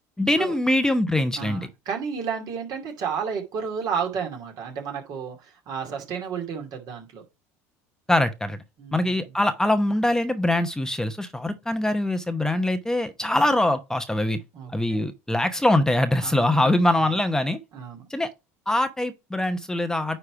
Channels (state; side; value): normal; both; correlation 0.86